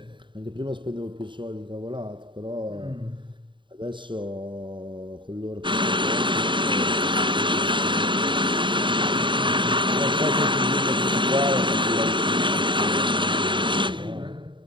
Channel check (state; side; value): late; left; 0.23 ms